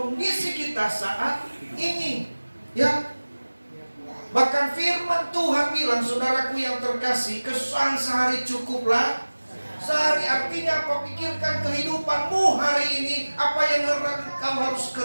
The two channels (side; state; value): both; inverted; correlation -1.00